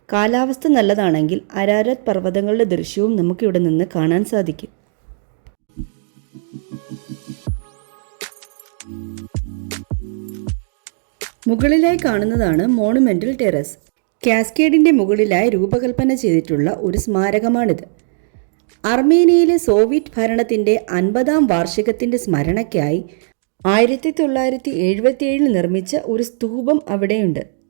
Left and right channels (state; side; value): silent; left; digital silence